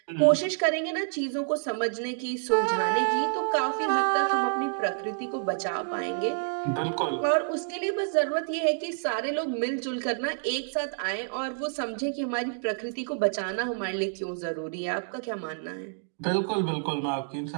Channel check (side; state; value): left; silent; digital silence